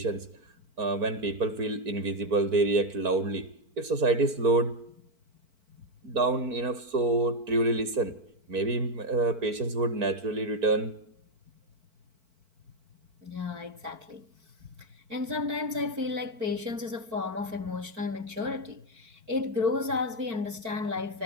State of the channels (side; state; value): left; late; 4.5 ms